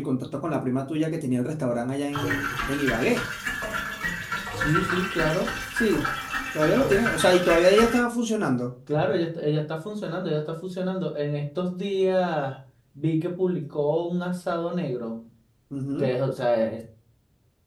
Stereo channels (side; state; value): both; identical; correlation 1.00